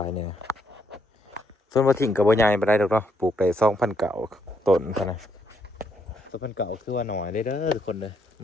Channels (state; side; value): normal; both; correlation 0.74